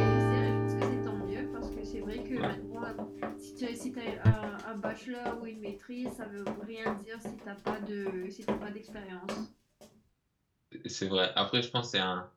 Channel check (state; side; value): identical; both; correlation 1.00